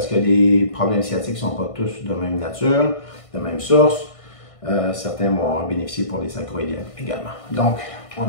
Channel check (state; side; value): late; right; 1.6 ms